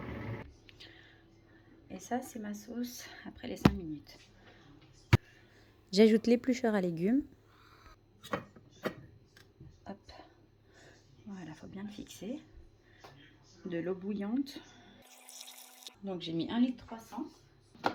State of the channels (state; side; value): identical; both; correlation 1.00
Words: Et ça, c'est ma sauce après les 5 minutes. J'ajoute l'éplucheur à légumes. Hop. Voilà, faut bien le fixer. De l'eau bouillante. Donc, j'ai mis 1,3 litre.